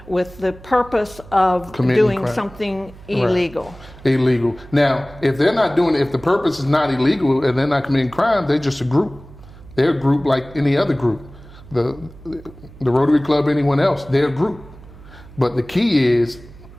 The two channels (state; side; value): noise; right; hum, 20 dB below the sound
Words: with the purpose of doing something illegal. Right. Illegal. Now, if they're not doing it, if the purpose is not illegal and they're not committing crime, they're just a group. They're a group like any other group. The Rotary Club, anyone else, they're a group. But the key is